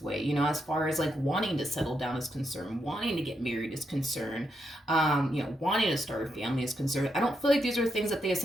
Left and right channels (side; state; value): both; normal; correlation 0.81